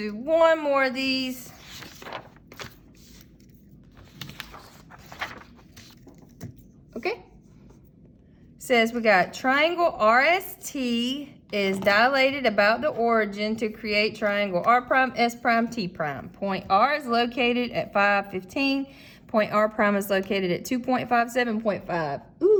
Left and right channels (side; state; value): both; identical; correlation 1.00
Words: one more of these. Okay. Says we got triangle RST is dilated about the origin to create triangle R prime, S prime, T prime. Point R is located at 515. Point R prime is located at 2.57.5.